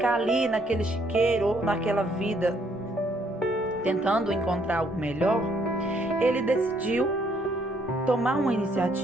ali naquele chiqueiro ou naquela vida tentando encontrar algo melhor, ele decidiu tomar uma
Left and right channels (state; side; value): normal; both; correlation 0.68